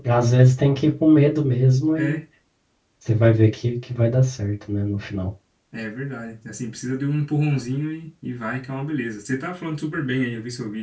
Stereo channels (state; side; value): identical; both; correlation 1.00